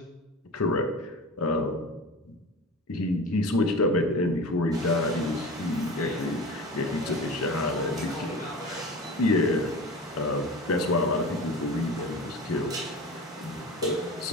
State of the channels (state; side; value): normal; both; correlation 0.33